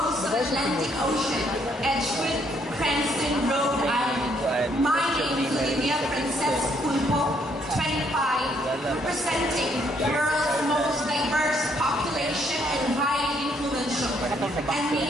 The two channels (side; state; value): both; normal; correlation 0.69